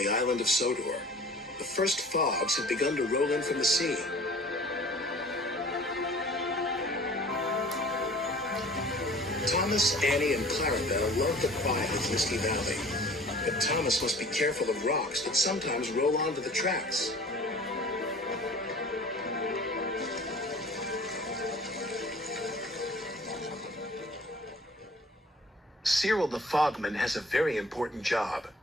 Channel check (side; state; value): both; normal; correlation 0.47